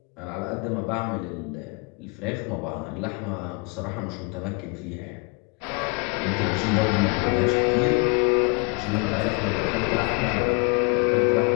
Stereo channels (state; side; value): quieter; right; 31.5 dB